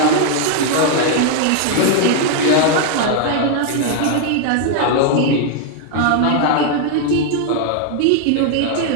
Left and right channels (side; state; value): both; different; correlation 0.00